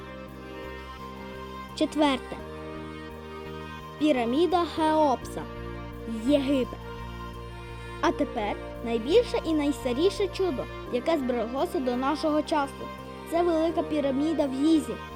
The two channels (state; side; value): identical; both; correlation 1.00